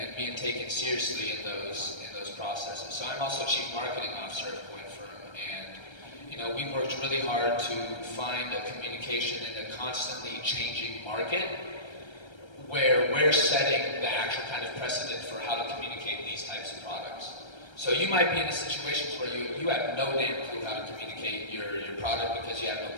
being taken seriously in those processes. So I'm also Chief Marketing Officer of CoinFirm, and we've worked really hard to find a communication in a constantly changing market where we're setting the actual kind of precedent for how to communicate these types of products. So you might be in situations where you have no damn clue how to communicate your product because you have no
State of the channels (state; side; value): late; right; 1.3 ms